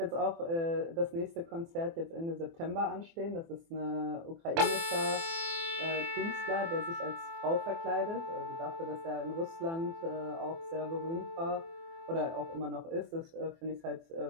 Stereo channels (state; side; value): late; left; 24 ms